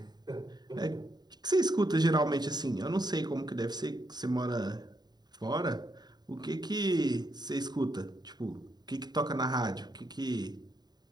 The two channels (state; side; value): late; left; 0.20 ms